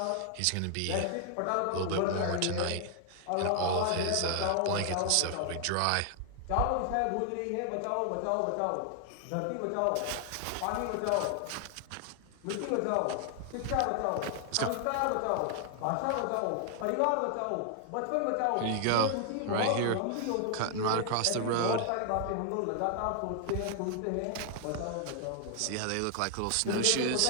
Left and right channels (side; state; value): both; different; correlation 0.00